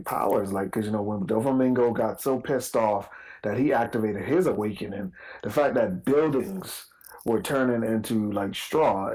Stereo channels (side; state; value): both; identical; correlation 1.00